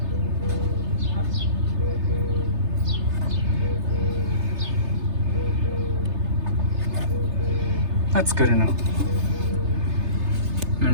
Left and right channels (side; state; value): left; late; 3.3 ms